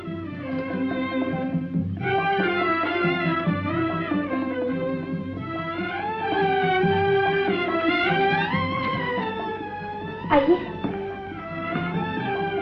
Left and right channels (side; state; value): both; identical; correlation 1.00